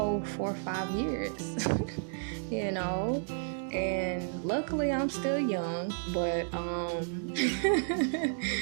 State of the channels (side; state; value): left; silent; digital silence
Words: 4 or 5 years, and luckily I'm still young, but,